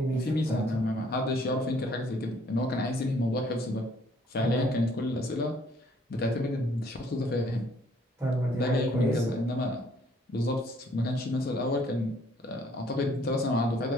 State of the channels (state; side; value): normal; both; correlation 0.62